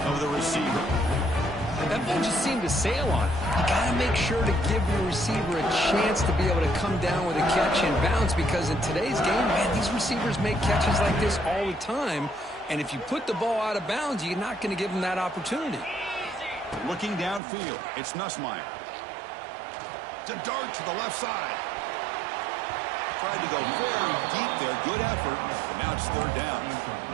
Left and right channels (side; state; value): left; drops out; at 17.4 s